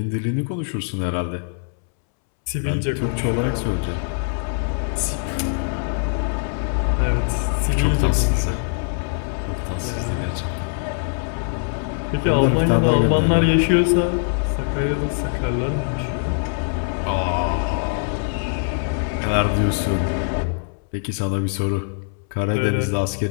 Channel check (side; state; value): right; silent; 64 dB below the other